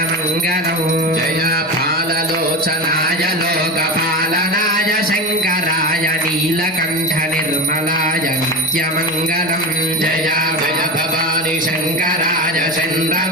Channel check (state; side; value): normal; both; correlation 0.22